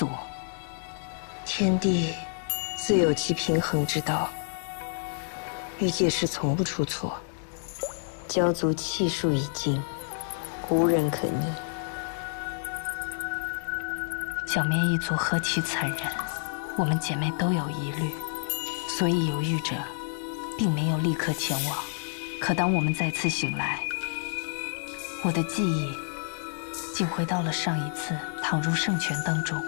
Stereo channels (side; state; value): right; silent; digital silence